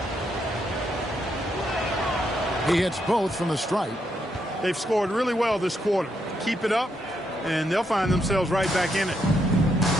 He hits both from the stripe. They've scored really well this quarter. Keep it up, and they'll find themselves right back in it.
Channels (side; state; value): both; normal; correlation 0.78